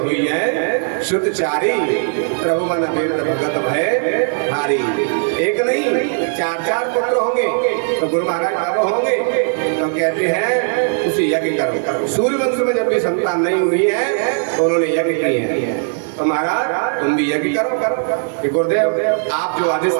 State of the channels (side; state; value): left; silent; 62 dB below the other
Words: है शुद्धचारी, प्रभु मन भगत भय हारी। एक नहीं 4 पुत्र होंगे। तो गुरु महाराज कब होंगे? तो कहते हैं उसे यज्ञ करो। सूर्य वंश में जब भी संतान नहीं हुई है तो उन्होंने यज्ञ किए हैं। तो महाराज तुम भी यज्ञ करो कि गुरुदेव आप जो आदेश